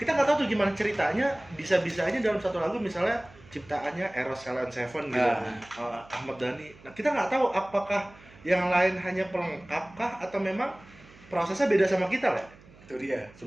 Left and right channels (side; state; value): right; noise; hum, 23 dB below the sound